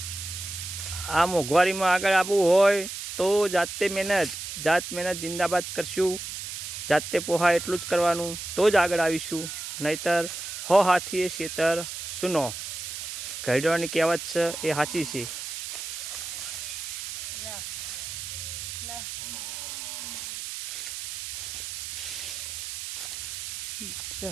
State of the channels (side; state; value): right; noise; hiss, 7 dB below the sound